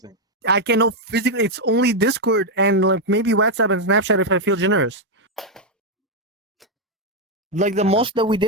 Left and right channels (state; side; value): normal; both; correlation 0.01